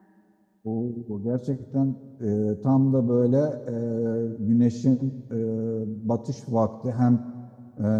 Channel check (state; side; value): identical; both; correlation 1.00